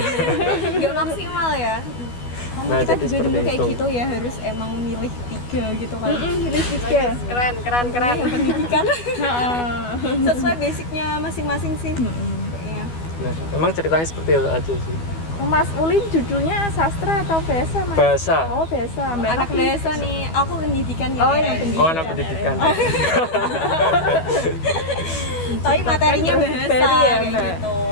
nggak maksimal ya. Nah, Kita jadi juga dulu seperti kayak itu. gitu ya, harus emang milih 3 gitu kan. Pilih tiga. Keren. Yang pendidikan sesuai basicnya masing-masing sih. Kayaknya. Nah, memang ceritanya seperti itu aja sih. Mas Ulin judulnya sastra atau bahasa Mas? Bahasa. Oh bahasa. Mbak Anak Novi? bahasa nih, aku pendidikan ya. Oh, yang pendidikan. Oh, anak pendidikan. Tapi materinya Kan bahasa baru ya, kayak Mbak? gitu.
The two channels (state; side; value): late; right; 12 ms